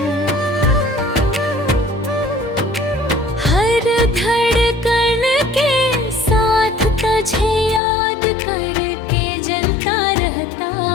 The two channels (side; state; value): right; drops out; at 7.8 s